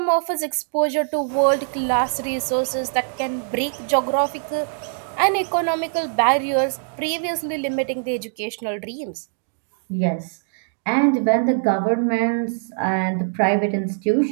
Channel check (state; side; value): silent; left; digital silence